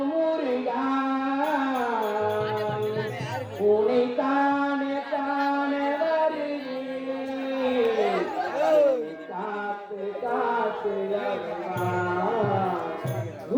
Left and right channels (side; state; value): both; identical; correlation 1.00